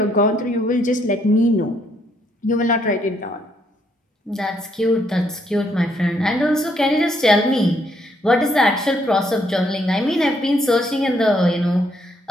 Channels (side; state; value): both; normal; correlation 0.71